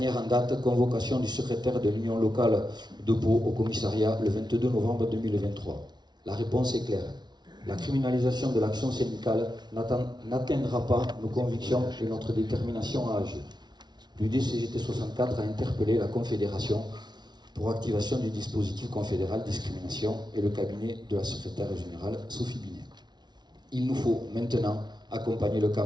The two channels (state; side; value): late; left; 0.20 ms